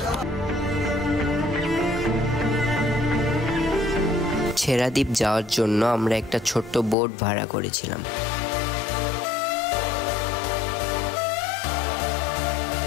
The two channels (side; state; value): right; drops out; at 7.0 s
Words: ছেড়াদ্বীপ যাওয়ার জন্য আমরা একটা ছোট্ট বোট ভাড়া করেছিলাম।